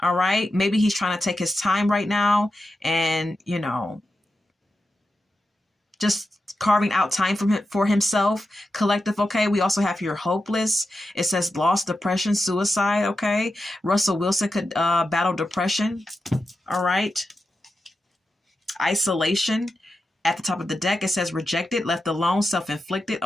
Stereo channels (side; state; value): both; normal; correlation 0.89